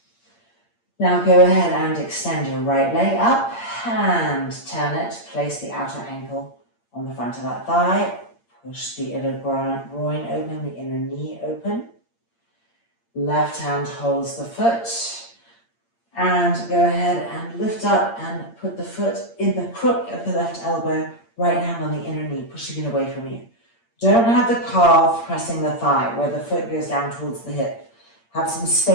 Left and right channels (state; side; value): late; right; 8.7 ms